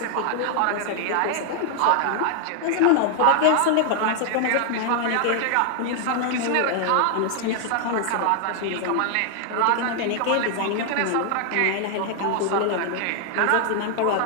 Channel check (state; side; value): different; both; correlation 0.00